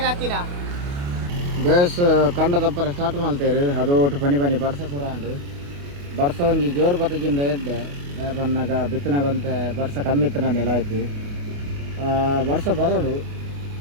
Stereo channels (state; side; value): late; left; 28 ms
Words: ಹತ್ತಿನ ಬೇಸ್ ಕಂಡ ತಪ್ಪರ ಸ್ಟಾರ್ಟ್ ಮಾಡ್ತೇರು ಅದು ಒಟ್ಟು ಪನಿ ಬರ್ಸ ಪೂರ ಅಂಡು ಬರ್ಸ ಒಂಜಿ ಜೋರು ಬತ್ತಗಿಂದ ಎಡ್ಡೆ ಬನ್ನಾಗ ಬಿತ್ತನಾಗಂತ ಬರ್ಸ ಕಮ್ಮಿ ಇತ್ತು ನೆಲ ಆಯ್ತು ಬರ್ಸ ಬರೋಡು